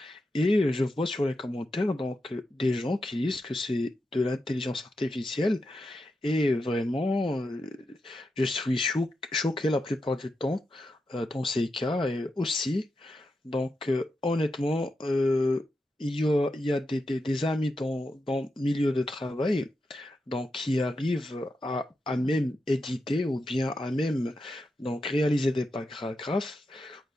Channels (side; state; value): both; normal; correlation 0.87